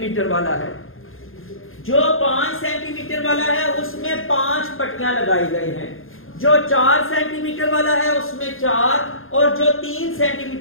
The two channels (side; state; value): right; late; 0.60 ms